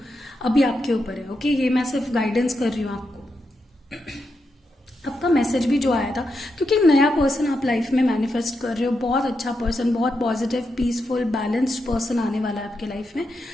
अभी आपके ऊपर है. ओके, ये मैं सिर्फ गाइडेंस कर रही हूँ आपको. आपका मैसेज भी जो आया था, क्योंकि एक नया पर्सन आप लाइफ में मैनिफेस्ट कर रहे हो, बहुत अच्छा पर्सन, बहुत पॉजिटिव, पीसफुल, बैलेंस्ड पर्सन आने वाला है आपके लाइफ में.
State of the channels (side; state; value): both; normal; correlation 0.85